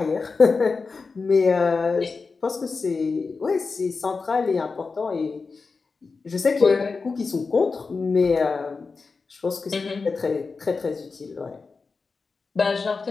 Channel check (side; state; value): right; quieter; 4.5 dB